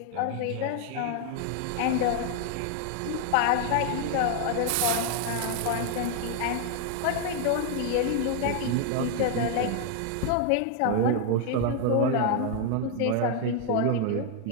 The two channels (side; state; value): both; different; correlation 0.00